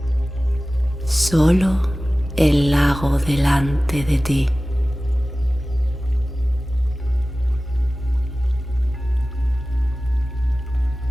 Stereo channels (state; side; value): normal; both; correlation 0.97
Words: Solo el lago delante de ti.